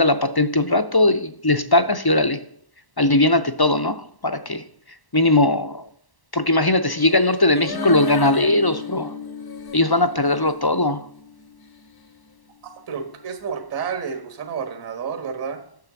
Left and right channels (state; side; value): late; right; 1.1 ms